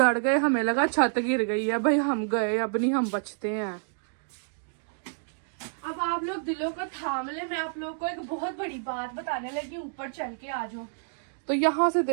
गए, हमें लगा छत गिर गई है। भाई हम गए, अब नहीं हम बचते हैं। अब आप लोग दिलों को थाम ले, मैं आप लोग को एक बहुत बड़ी बात बताने लगी। ऊपर चल के आ जाओ। तो यहाँ से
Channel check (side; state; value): left; silent; digital silence